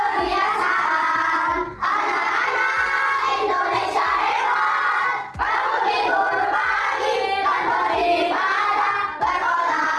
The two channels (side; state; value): both; identical; correlation 1.00